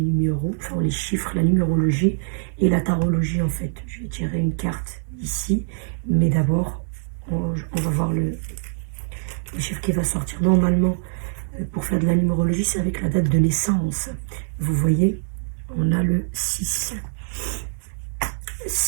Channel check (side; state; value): left; silent; digital silence